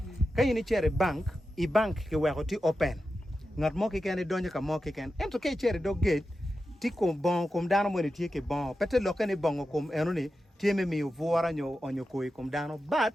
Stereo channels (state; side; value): normal; both; correlation 0.91